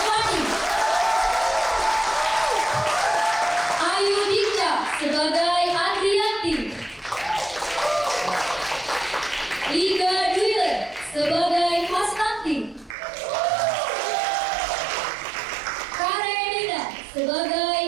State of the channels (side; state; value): left; drops out; at 13.0 s